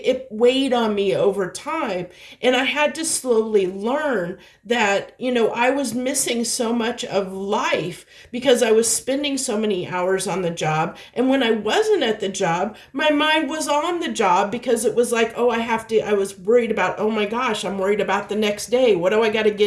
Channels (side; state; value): both; identical; correlation 1.00